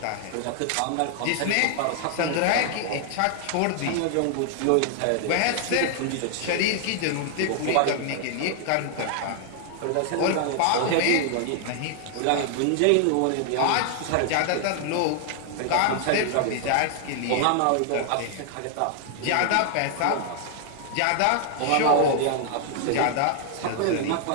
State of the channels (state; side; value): different; both; correlation 0.00